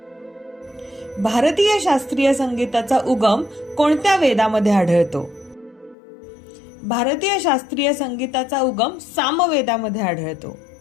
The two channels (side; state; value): right; drops out; at 6.0 s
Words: भारतीय शास्त्रीय संगीताचा उगम कोणत्या वेदामध्ये आढळतो? भारतीय शास्त्रीय संगीताचा उगम सामवेदामध्ये आढळतो.